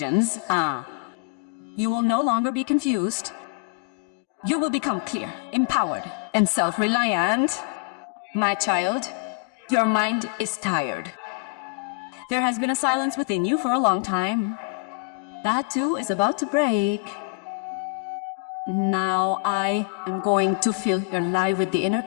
You will no longer be confused. You will become clear, empowered, and self-reliant. My child, your mind is tired. There has been a silence within you for a long time. That too is about to break. Now I am going to fill your life with the inner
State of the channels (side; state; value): right; quieter; 29.5 dB